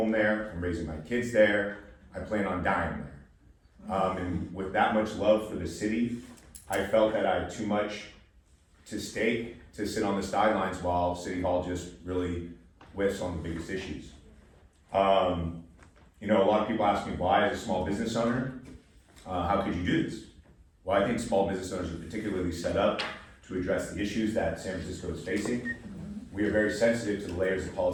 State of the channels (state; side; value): identical; both; correlation 1.00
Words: there, I'm raising my kids there, I plan on dying there. And with that much love for the city, I felt that I had too much to stake to sit on the sidelines while City Hall just really whiffs on the biggest issues. You know, a lot of people ask me why, as a small business owner, how could you do this? Well, I think small business owners are particularly set up to address the issues that San Francisco is facing. We are very sensitive to the layers of